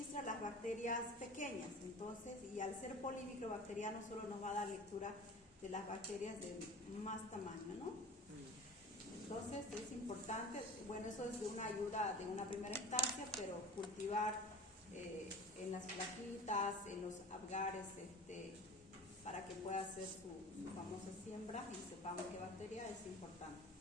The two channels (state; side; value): normal; both; correlation 0.37